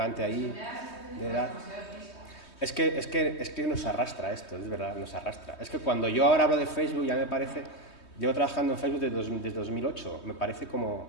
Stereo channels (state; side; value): late; right; 3.2 ms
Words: ahí de edad. Es que nos arrastra esto, es verdad, nos arrastra. Es que cuando yo ahora hablo de Facebook ya me parece... Llevo trabajando en Facebook desde 2008, me parece